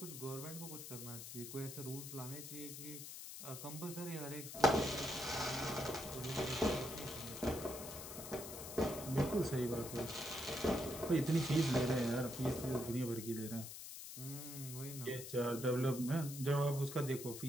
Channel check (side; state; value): left; noise; hiss, 9 dB below the sound